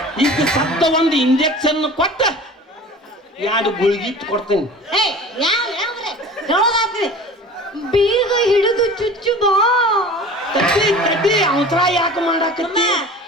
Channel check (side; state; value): both; normal; correlation 0.40